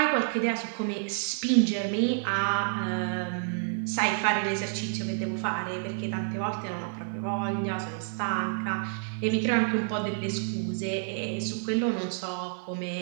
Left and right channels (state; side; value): silent; left; digital silence